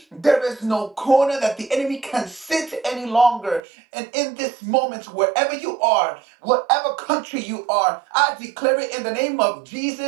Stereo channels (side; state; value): left; drops out; at 3.6 s